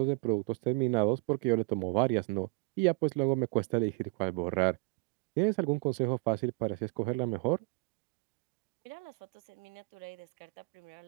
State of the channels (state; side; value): quieter; left; 28.1 dB